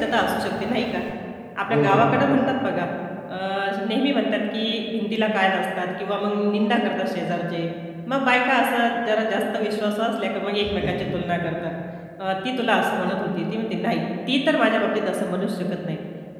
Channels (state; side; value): identical; both; correlation 1.00